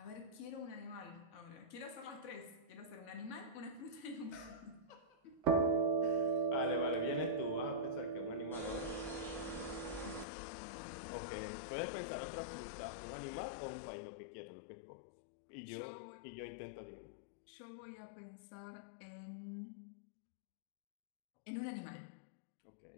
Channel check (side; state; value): right; drops out; at 10.2 s